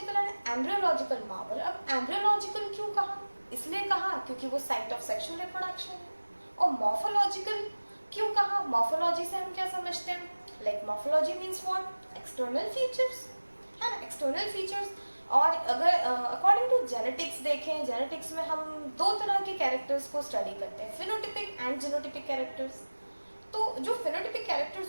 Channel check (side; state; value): both; inverted; correlation -1.00